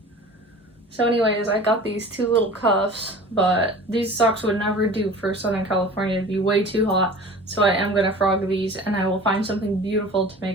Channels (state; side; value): normal; both; correlation 0.41